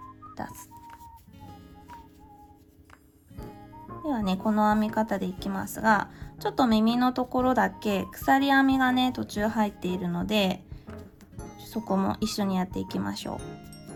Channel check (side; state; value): both; identical; correlation 1.00